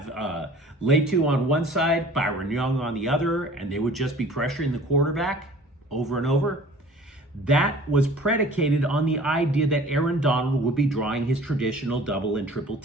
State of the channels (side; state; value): both; normal; correlation 0.47